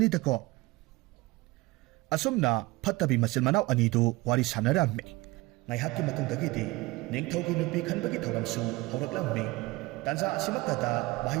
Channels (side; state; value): left; quieter; 21.5 dB